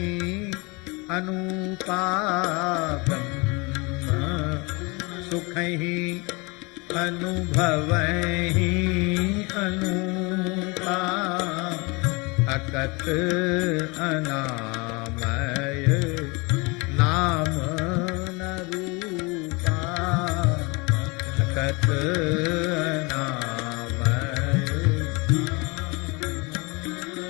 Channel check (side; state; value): right; quieter; 27.5 dB